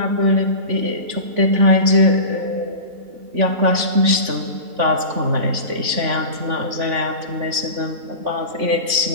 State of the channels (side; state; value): left; late; 3.5 ms